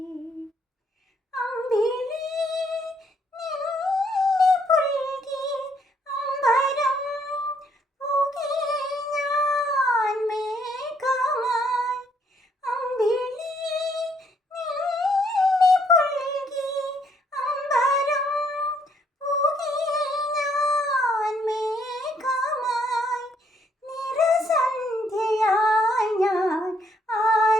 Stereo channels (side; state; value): both; normal; correlation 0.69